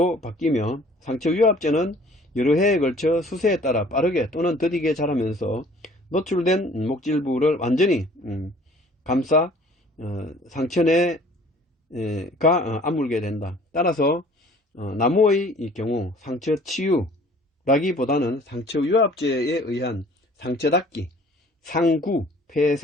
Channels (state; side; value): normal; both; correlation 0.53